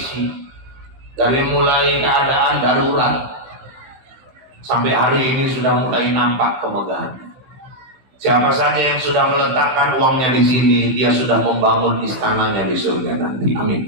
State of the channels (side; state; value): left; late; 15 ms